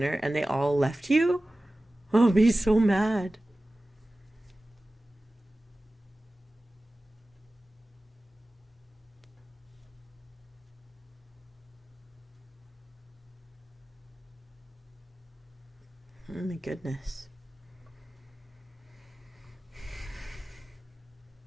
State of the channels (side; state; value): both; normal; correlation 0.96